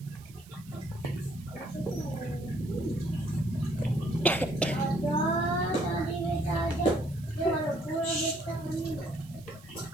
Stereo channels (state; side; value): noise; right; hiss, 23 dB below the sound